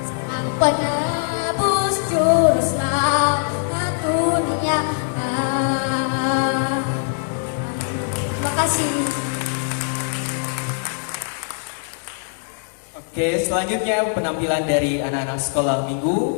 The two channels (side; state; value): right; silent; digital silence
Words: sang penebus juru selamat dunia. Terima kasih. Oke, selanjutnya penampilan dari anak-anak sekolah